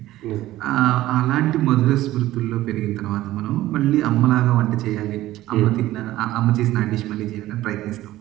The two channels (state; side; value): quieter; left; 15.5 dB